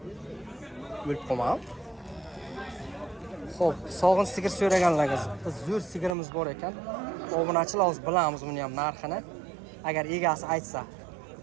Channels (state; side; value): drops out; left; at 6.2 s